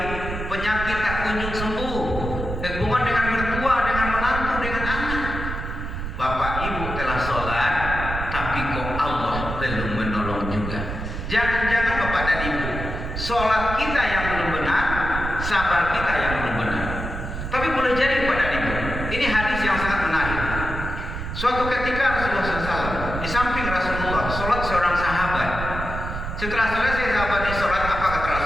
penyakit tak kunjung sembuh, hubungan dengan mertua, dengan menantu, dengan anak. Bapak ibu telah sholat, tapi kok Allah belum menolong juga. Jangan-jangan bapak dan ibu, sholat kita yang belum benar, sabar kita yang belum benar. Tapi boleh jadi kepada ibu, ini hadis yang sangat menarik. Suatu ketika Rasulullah SAW, di samping Rasulullah, sholat seorang sahabat. Setelah selesai sahabat sholat, apa kata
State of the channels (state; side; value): noise; right; rumble, 5 dB below the sound